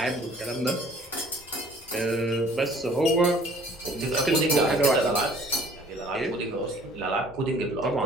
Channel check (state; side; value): normal; both; correlation 0.54